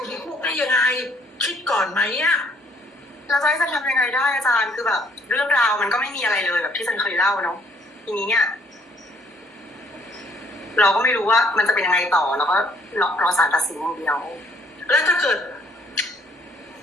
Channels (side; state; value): both; normal; correlation 0.64